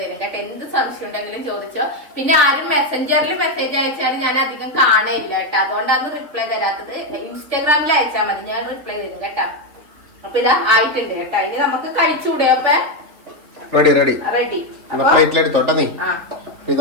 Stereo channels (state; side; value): late; left; 3.9 ms